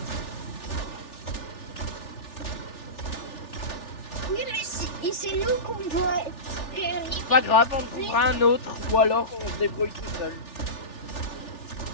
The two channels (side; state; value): right; late; 3.4 ms